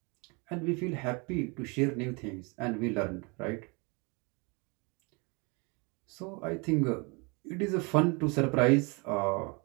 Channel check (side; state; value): left; quieter; 30.3 dB